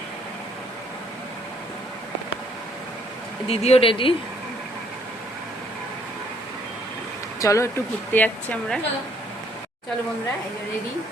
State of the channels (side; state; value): both; normal; correlation 0.65